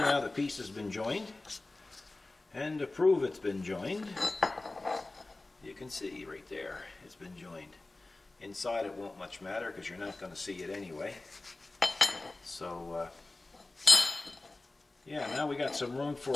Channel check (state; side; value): quieter; right; 3.1 dB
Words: the piece has been joined. And to prove it's been joined, you can see right there, it's been joined. Inside it won't much matter because you're not going to see it anyway. So, yeah, now we got some room